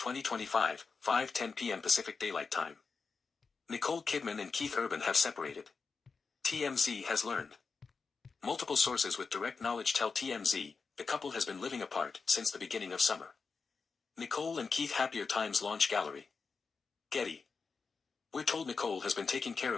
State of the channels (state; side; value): quieter; right; 4.9 dB